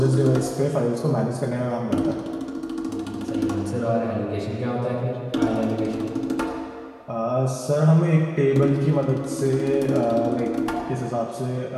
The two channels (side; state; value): both; identical; correlation 1.00